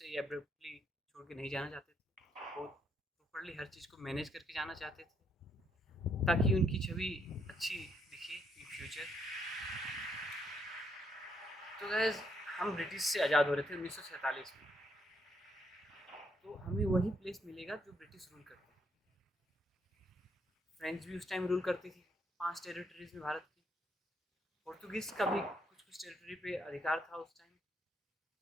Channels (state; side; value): normal; both; correlation 0.74